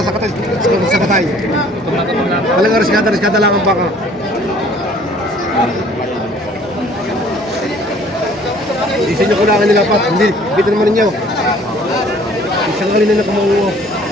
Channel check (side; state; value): both; normal; correlation 0.55